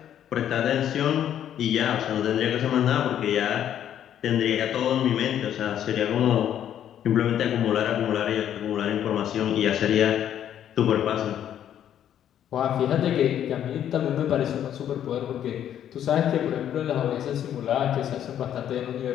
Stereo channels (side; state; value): right; quieter; 10.3 dB